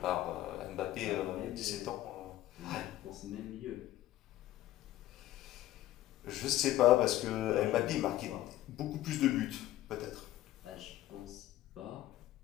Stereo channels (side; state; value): right; quieter; 14.4 dB